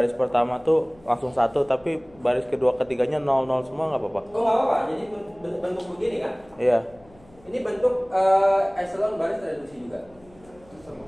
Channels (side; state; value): left; noise; hum, 27 dB below the sound